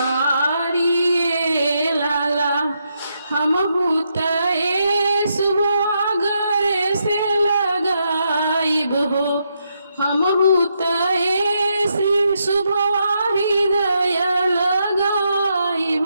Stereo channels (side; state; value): both; inverted; correlation -0.80